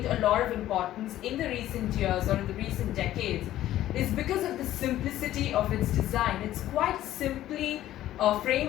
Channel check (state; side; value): quieter; right; 13.6 dB